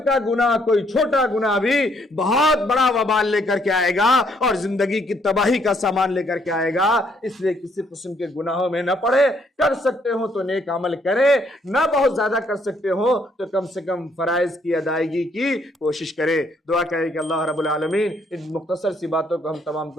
گناہ، کوئی چھوٹا گناہ بھی بہت بڑا وبال لے کر کے آئے گا اور زندگی کی تباہی کا سامان لے کر کے آئے گا۔ اس لیے کسی قسم کے گناہوں میں نہ پڑے، کر سکتے ہو تو نیک عمل کرے، نہ بہت زیادہ کر سکتے ہو تو کم سے کم فرائض کی ادائیگی کی کوشش کرے۔ دعا کرے کہ اللہ رب العالمین ان مختصر سی باتوں کو ہم تمام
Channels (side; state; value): both; normal; correlation 0.69